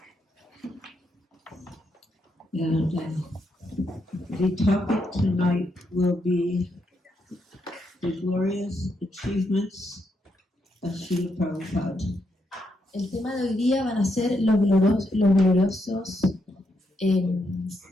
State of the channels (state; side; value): normal; both; correlation 0.80